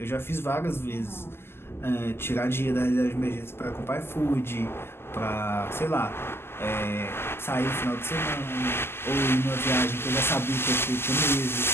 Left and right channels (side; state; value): right; late; 0.11 ms